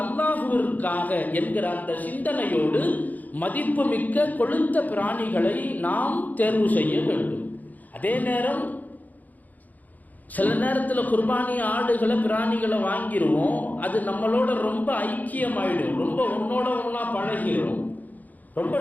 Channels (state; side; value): late; right; 0.081 ms